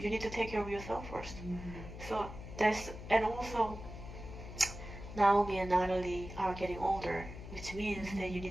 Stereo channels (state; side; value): noise; left; hum, 11 dB below the sound